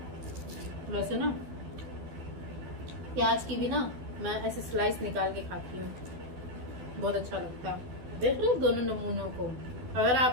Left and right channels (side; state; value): left; late; 12 ms